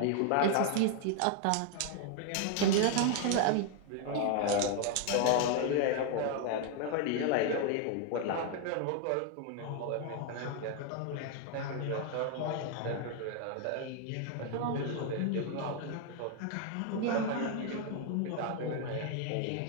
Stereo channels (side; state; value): both; different; correlation 0.00